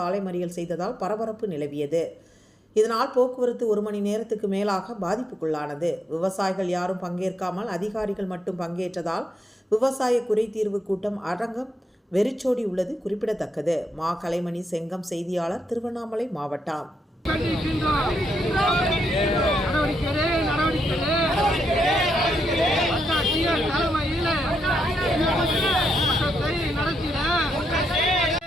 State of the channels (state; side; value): normal; both; correlation 0.81